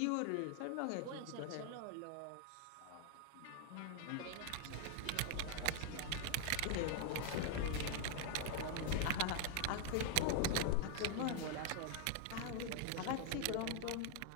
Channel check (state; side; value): different; both; correlation 0.00